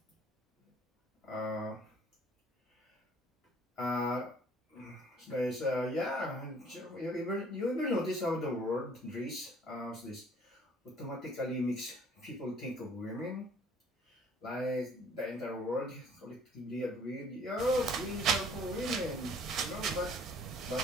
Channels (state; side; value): normal; both; correlation 0.56